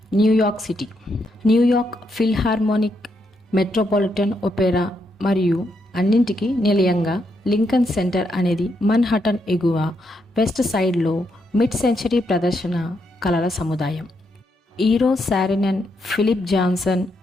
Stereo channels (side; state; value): both; normal; correlation 0.79